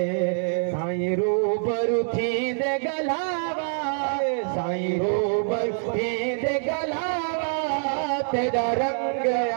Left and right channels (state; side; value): silent; left; 62 dB below the other